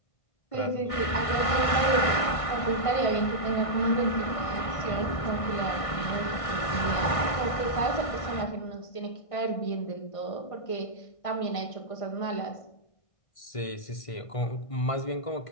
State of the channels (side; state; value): right; late; 1.5 ms